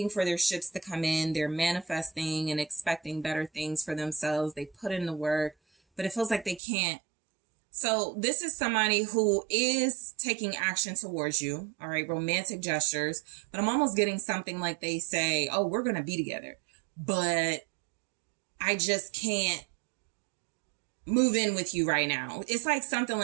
for their ships to come in. They're manifesting and expecting better things for themselves. They put in the work, but it feels like they can't. So this is somebody who is taking action towards you. All right, romantic gestures. But I'm almost getting something like they say, oh, we're going to be together, but I just can't move in with you right now. It's like something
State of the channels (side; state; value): left; drops out; at 6.6 s